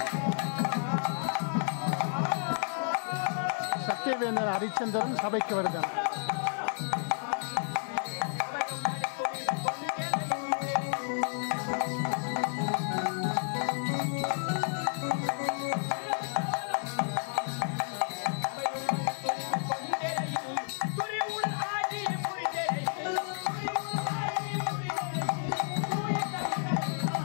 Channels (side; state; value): right; silent; digital silence